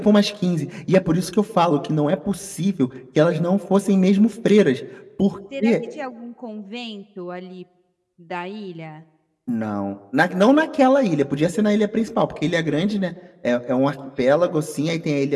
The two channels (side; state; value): both; identical; correlation 1.00